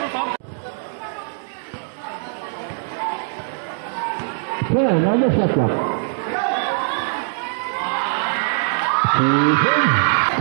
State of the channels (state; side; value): silent; left; digital silence